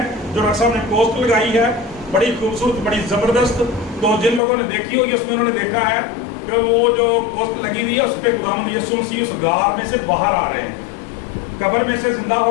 جو ڈاکٹر صاحب نے پوسٹ لگائی ہے. بڑی خوبصورت، بڑی زبردست. تو جن لوگوں نے دیکھی ہوگی اس میں انہوں نے دیکھا ہے کہ وہ جو پوسٹ لگی ہوئی ہے اس پہ خداوند یسوع مسیح اس غار میں سے باہر آ رہے ہیں، قبر میں سے زندہ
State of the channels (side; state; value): right; drops out; at 4.4 s